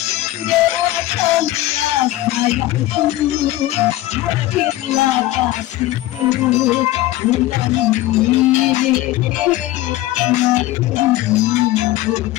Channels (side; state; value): right; quieter; 15.9 dB